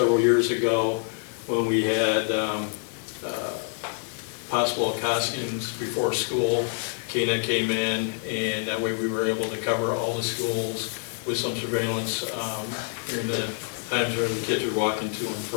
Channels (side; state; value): right; silent; 55 dB below the other